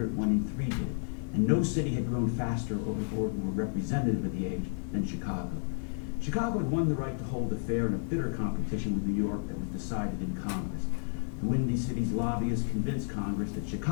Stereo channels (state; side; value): silent; right; digital silence